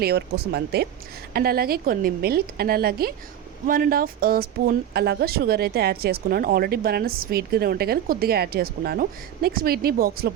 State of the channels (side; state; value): left; quieter; 10.5 dB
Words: కోసం అంతే. అండ్ అలాగే కొన్ని మిల్క్ అండ్ అలాగే 1.5 స్పూన్ అలాగా షుగర్ అయితే యాడ్ చేసుకున్నాను. ఆల్రెడీ బనానా స్వీట్గానే ఉంటాయి కానీ కొద్దిగా యాడ్ చేసుకున్నాను. నెక్స్ట్ వీటిని బాక్స్లో